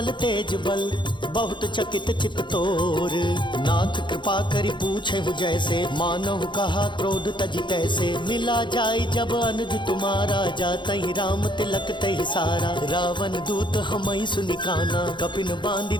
तेज बल, बहुत चकित चित तोर। नाथ कृपा करि पूछे हूँ जैसे, मानहु कहा क्रोध तजि तैसे। मिला जाई जब अनुज तुम्हारा, जातहि राम तिलक तहि सारा। रावण दूत हमहि सुनि काना, कपिन बांधि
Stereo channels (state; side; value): late; right; 0.23 ms